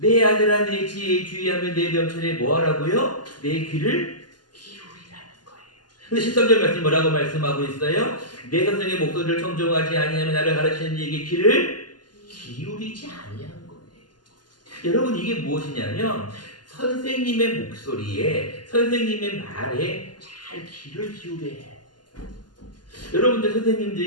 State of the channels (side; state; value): right; late; 0.71 ms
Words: 아들아 내 지혜에 주의하며 내 명철에 뭐하라고요? 내 귀를 기울이라는 거예요. 근데 13절 말씀 뭐라고 말씀하고 있어요? 내 선생의 목소리를 청종하지 아니하며 나를 가르치는 이에게 귀를 기울이지 아니한 거예요. 여러분 이게 무엇이냐면 선생님의 목소리에 선생님의 말에 잘 귀를 기울여야 해요. 여러분들